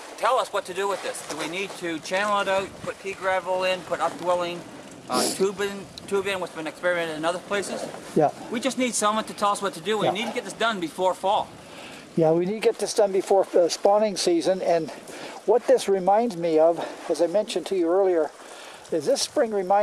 tell us what to do with this. Do we need to channel it out, put pea gravel in, put updwelling, tube in, what's been experimented in other places? Yeah. We just need someone to tell us what to do. We need to get this done before fall. Yeah, we need to get this done before spawning season. And what this reminds me of, as I mentioned to you earlier, is this spring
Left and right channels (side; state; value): both; identical; correlation 1.00